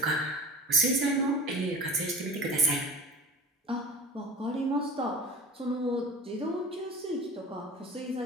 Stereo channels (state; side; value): normal; both; correlation 0.35